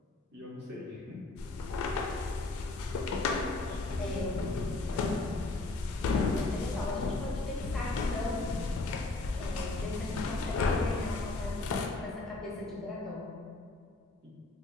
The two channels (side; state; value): right; quieter; 3.1 dB